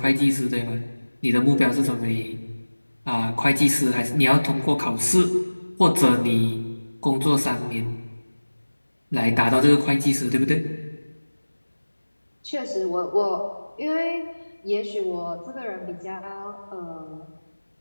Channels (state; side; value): inverted; both; correlation -1.00